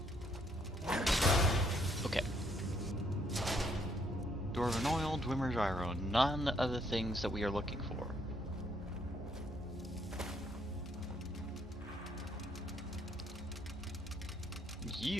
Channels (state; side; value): normal; both; correlation 0.70